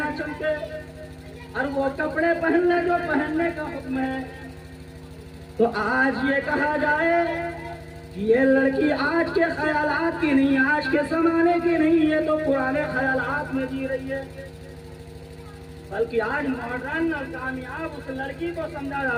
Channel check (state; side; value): identical; both; correlation 1.00